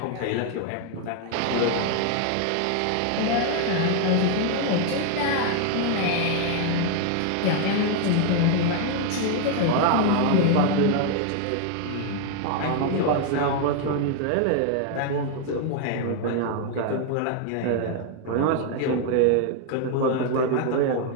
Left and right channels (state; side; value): different; both; correlation 0.00